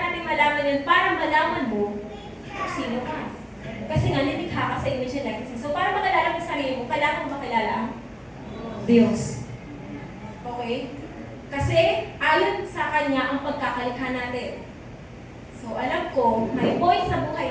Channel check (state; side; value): identical; both; correlation 1.00